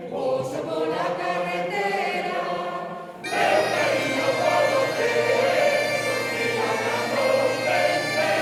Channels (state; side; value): identical; both; correlation 1.00